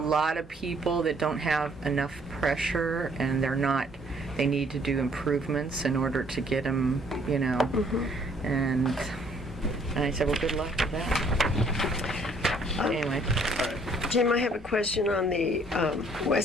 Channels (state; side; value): normal; both; correlation 0.62